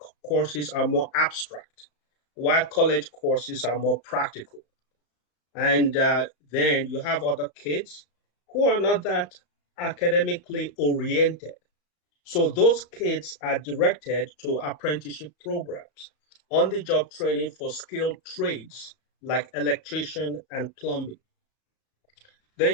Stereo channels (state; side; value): late; right; 34 ms